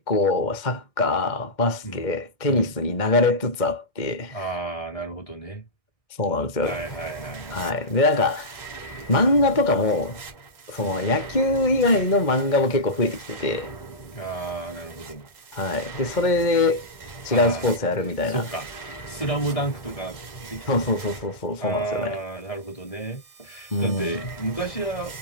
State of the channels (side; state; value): right; late; 1.6 ms